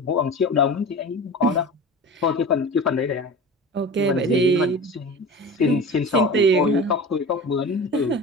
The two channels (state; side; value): normal; both; correlation 0.33